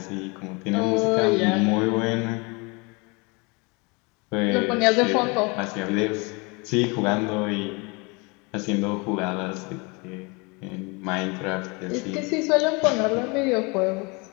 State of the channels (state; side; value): quieter; right; 28.9 dB